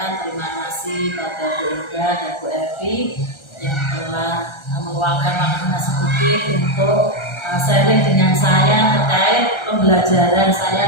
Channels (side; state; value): right; late; 1.3 ms